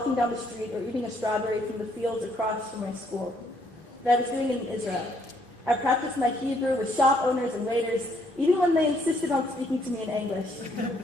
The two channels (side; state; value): both; normal; correlation 0.69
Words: down the street or eating a strawberry from the fields across from my school. That I was doing it in Israel. I practiced my Hebrew with shop owners and waiters, even when they insisted on speaking to me in English.